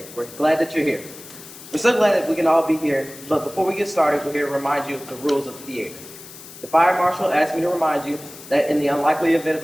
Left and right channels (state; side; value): noise; left; hiss, 17 dB below the sound